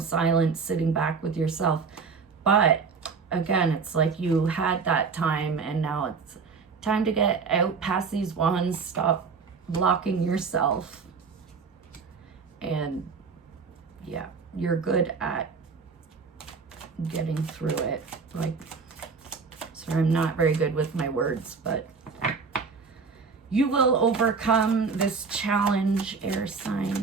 sitting back with yourself. But again, it's like you had that time and now it's time to get out past these wands, stop blocking yourself. And yeah, you're good at getting through it. Like, sorry, I'm not very good with my words, but You will overcome this challenge, air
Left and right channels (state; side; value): quieter; left; 5.2 dB